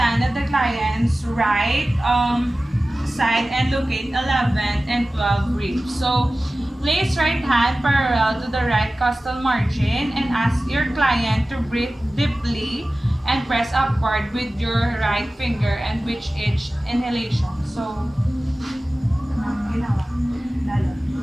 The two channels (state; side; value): normal; both; correlation 0.96